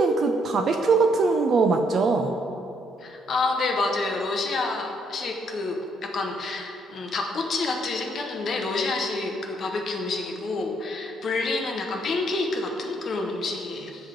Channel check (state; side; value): normal; both; correlation 0.71